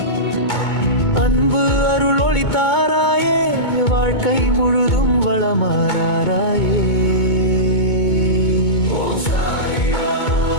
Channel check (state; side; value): late; right; 2.2 ms